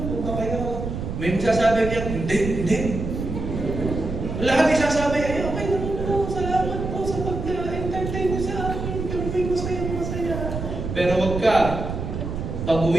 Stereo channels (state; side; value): noise; right; rumble, 5 dB below the sound